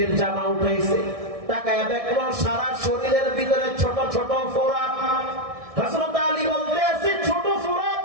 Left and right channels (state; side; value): late; left; 1.6 ms